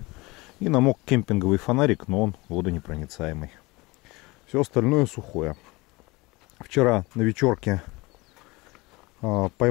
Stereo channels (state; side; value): quieter; right; 23.4 dB